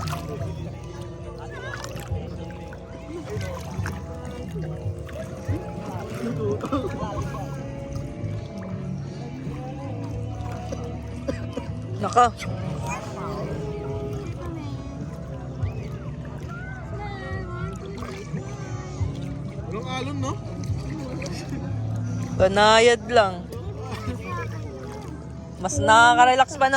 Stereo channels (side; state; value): both; identical; correlation 1.00